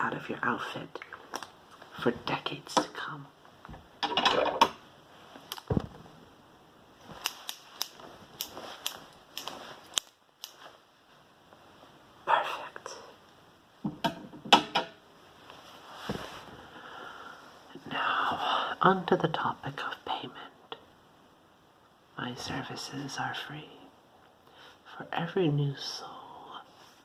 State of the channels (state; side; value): identical; both; correlation 1.00